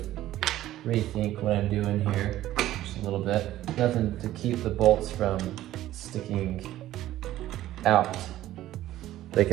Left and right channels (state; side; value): quieter; left; 14.2 dB